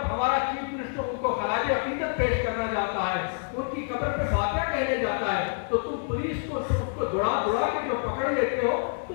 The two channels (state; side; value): silent; right; digital silence